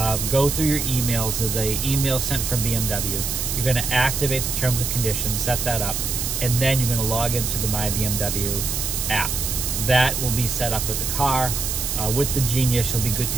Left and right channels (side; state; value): right; noise; hiss, 2 dB below the sound